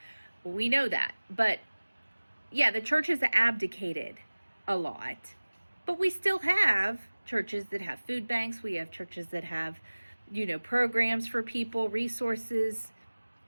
We know that. But yeah, the church has abdicated a lot. But we still have churches that have food banks. We have churches that have, programs for people, resources.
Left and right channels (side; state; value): both; inverted; correlation -1.00